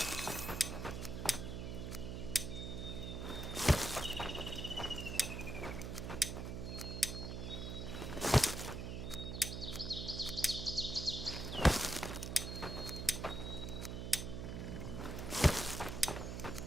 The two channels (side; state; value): right; noise; hum, 5 dB below the sound